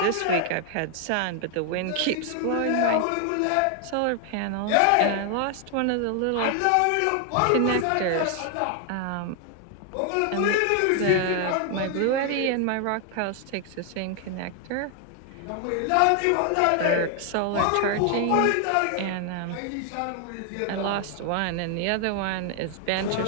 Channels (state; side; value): different; both; correlation 0.00